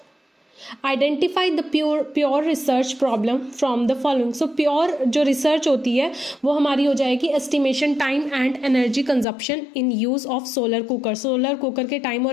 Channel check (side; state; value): right; drops out; at 9.2 s